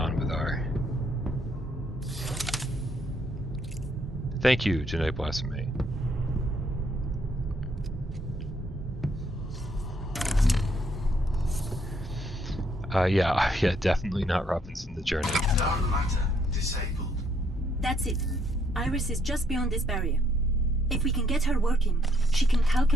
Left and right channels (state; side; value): normal; both; correlation 0.70